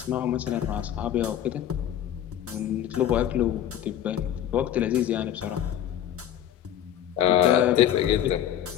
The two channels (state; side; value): quieter; right; 10.6 dB